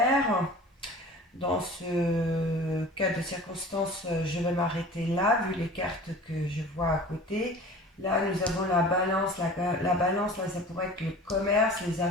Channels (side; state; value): both; normal; correlation 0.41